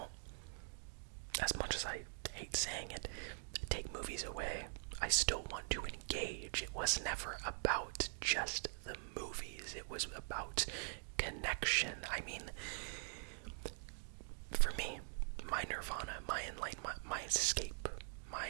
as much as I hate saying it, take movies away, I still want to engage. It was never about just the movies. It was about connection. I mean, for me, my nirvana, my enlightenment, my escape, my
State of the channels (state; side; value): silent; left; digital silence